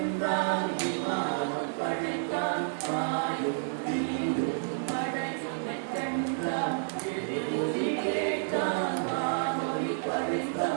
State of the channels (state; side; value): silent; left; digital silence